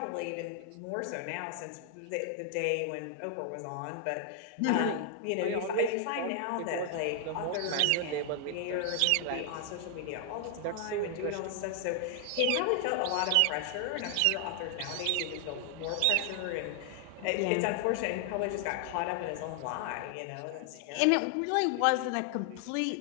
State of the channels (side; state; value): both; different; correlation 0.00